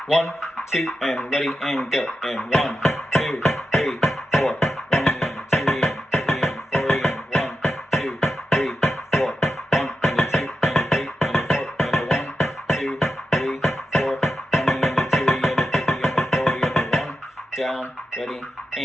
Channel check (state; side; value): normal; both; correlation 0.89